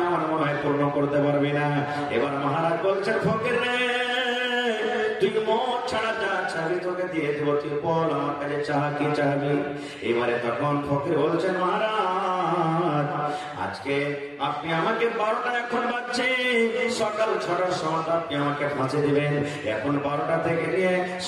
আমার মনে হয় পূর্ণ করতে পারবে না। এবার মহারাজ বলছেন, ফকির রে তুই মত ছাড়া যা চাবি তোকে দিয়ে দেবো, তুই বল আমার কাছে চাহ কি চাবি। এবারে তখন ফকির বলছেন, মহারাজ আজকে আপনি আমাকে 12টা এখন বাজছে, সকাল 6টার সময় আপনি আমাকে ফাঁসি দিবেন। এখন 12টা থেকে নিয়ে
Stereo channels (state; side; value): identical; both; correlation 1.00